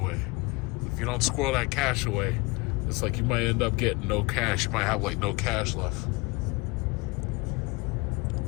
If you don't squirrel that cash away, it's like you might end up getting no cash. You might have like no cash left.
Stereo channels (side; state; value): right; quieter; 26.1 dB